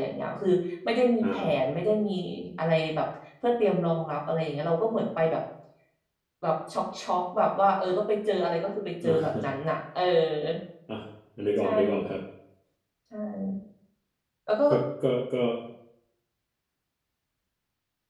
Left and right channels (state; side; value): identical; both; correlation 1.00